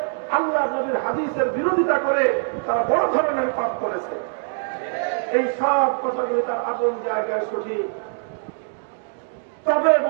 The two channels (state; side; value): silent; left; digital silence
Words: আল্লাহ নবীর হাদিসের বিরোধিতা করে তারা বড় ধরনের পাপ করেছে। এই সব কথাগুলি তার আপন জায়গায় সঠিক। তবে